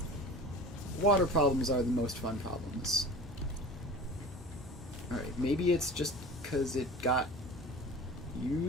Water problems are the most fun problems. Alright, maybe it's just because it got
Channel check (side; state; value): both; normal; correlation 0.37